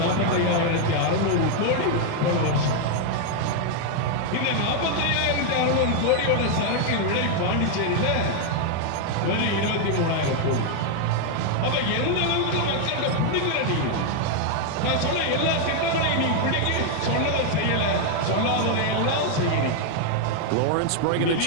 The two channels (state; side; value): different; both; correlation 0.00